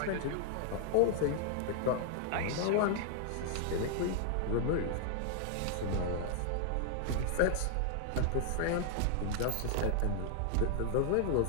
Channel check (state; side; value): different; both; correlation 0.00